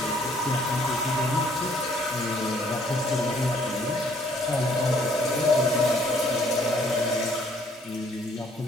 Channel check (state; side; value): normal; both; correlation 0.63